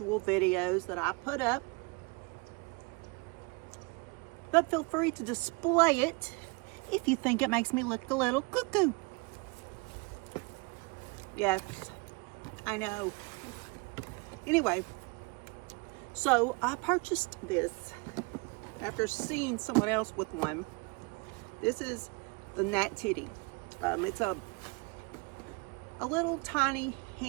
videos that I put up, but feel free to display it if you think it makes me look a little cuckoo. Yes, I know. Anyway, so I purchased this after seeing someone else with one. This is the Nat Titty. It's a little tiny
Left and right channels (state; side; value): quieter; left; 29.2 dB